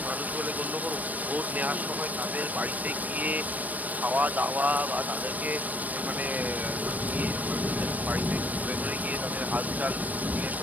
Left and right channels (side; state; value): left; late; 0.077 ms